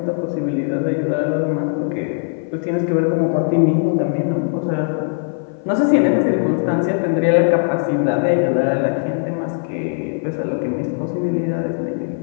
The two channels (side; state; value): right; silent; 55 dB below the other